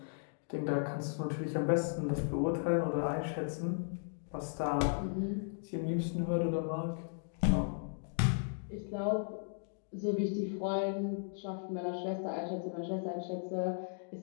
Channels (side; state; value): right; silent; digital silence